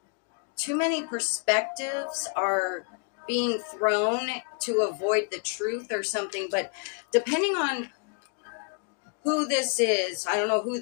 too many perspectives are being thrown to avoid the truth or something. But depending on who this is, I don't know who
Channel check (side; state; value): right; quieter; 38.6 dB